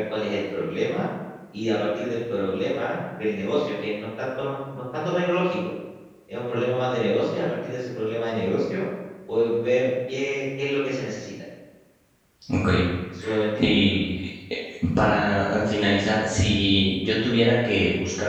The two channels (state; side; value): identical; both; correlation 1.00